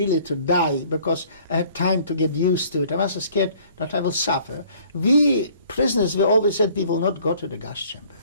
to die because I had time to get used to it. I was scared that I will suffer. We prisoners, we always said we will not go to the gas chamber.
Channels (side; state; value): both; inverted; correlation -0.56